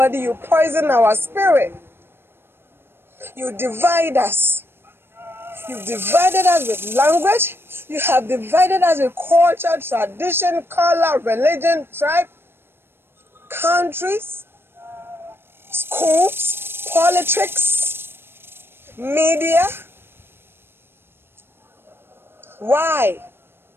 you poison our spirit. You divide us. You've divided us with language. You have divided us with culture, tradition, color, religion, tribe, countries, schools, politics, media. Why?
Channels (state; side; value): late; left; 0.11 ms